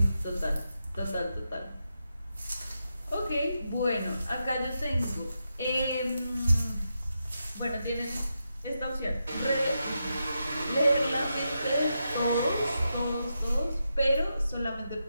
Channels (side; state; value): both; inverted; correlation -0.86